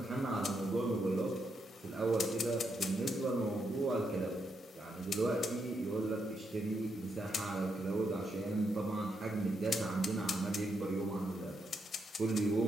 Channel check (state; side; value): normal; both; correlation 0.80